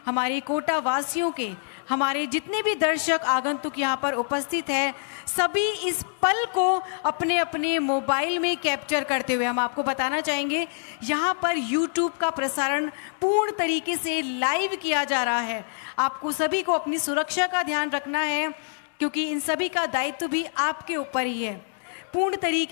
हमारे कोटा वासियों के, हमारे जितने भी दर्शक आगंतुक यहाँ पर उपस्थित है, सभी इस पल को अपने अपने मोबाइल में कैप्चर करते हुए, हम आपको बताना चाहेंगे यहाँ पर YouTube का प्रसारण पूर्ण तरीके से लाइव किया जा रहा है। आपको सभी को अपनी सुरक्षा का ध्यान रखना है, क्योंकि इन सभी का दायित्व भी आपके ऊपर ही है। पूर्ण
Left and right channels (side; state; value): right; silent; digital silence